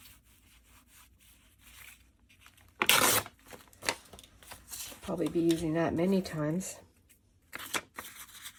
Probably be using that many times.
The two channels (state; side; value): identical; both; correlation 1.00